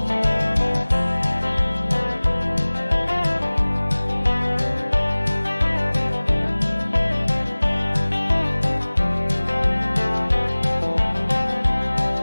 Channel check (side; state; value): both; inverted; correlation -1.00